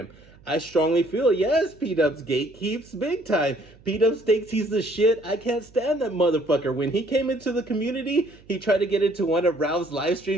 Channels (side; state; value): right; noise; hum, 26 dB below the sound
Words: I strongly feel, yes, P-Dubs gatekeeps big time. P-Dubs thinks he's the shit. I can't stand that motherfucker. When he came into the community, he tried to get into one of Ralph's live